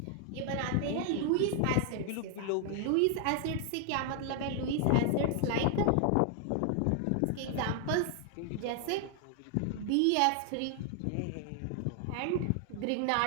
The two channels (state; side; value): different; both; correlation 0.00